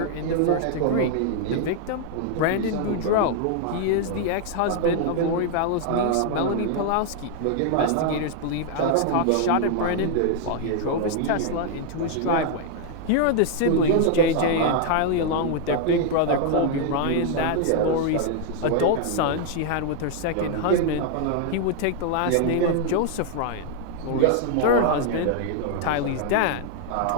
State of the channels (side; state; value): both; different; correlation 0.00